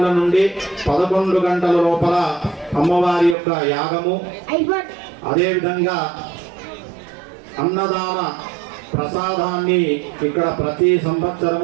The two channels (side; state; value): left; drops out; at 3.4 s